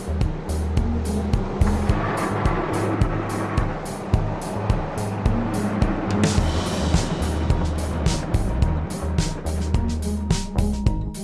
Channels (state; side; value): identical; both; correlation 1.00